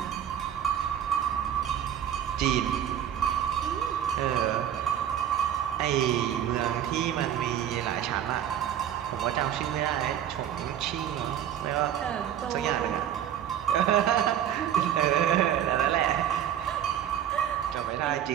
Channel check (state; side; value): quieter; left; 10.3 dB